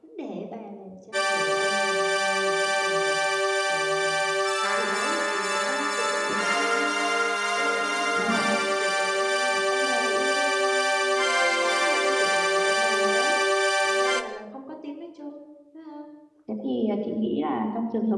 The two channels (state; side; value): identical; both; correlation 1.00